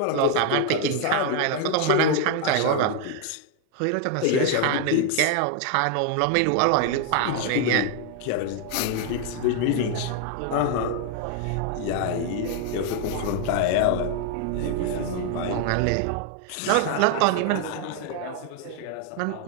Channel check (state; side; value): different; both; correlation 0.00